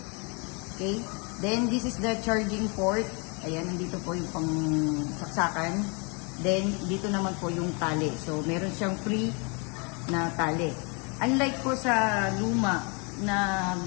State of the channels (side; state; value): right; quieter; 33.6 dB